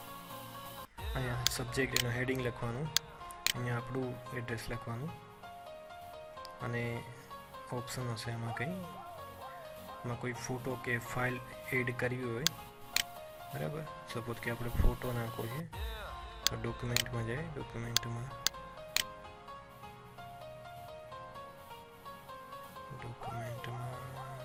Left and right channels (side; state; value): both; identical; correlation 1.00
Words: અહીંયા સબ્જેક્ટ એનો હેડિંગ લખવાનું, અહીંયા આપણું એડ્રેસ લખવાનું અને ઓપ્શન હશે એમાં કોઈ ફોટો કે ફાઇલ એડ કરવી હોય. બરાબર, સપોઝ કે આપણે ફોટો નાખવો છે તો ડોક્યુમેન્ટમાં જાય, ડોક્યુમેન્ટમાં